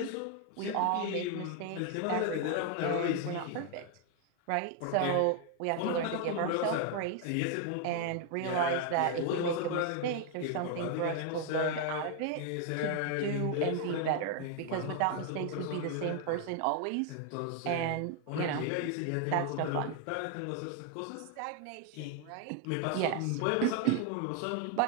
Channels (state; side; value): different; both; correlation 0.00